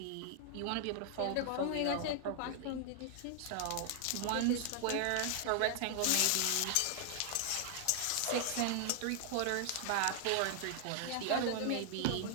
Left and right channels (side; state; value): both; different; correlation 0.00